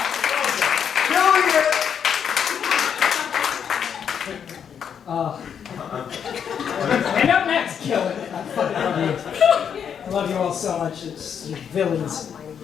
bunch of villains,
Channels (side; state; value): right; quieter; 7.8 dB